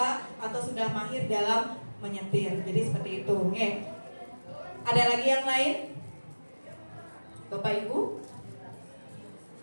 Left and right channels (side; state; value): both; inverted; correlation -1.00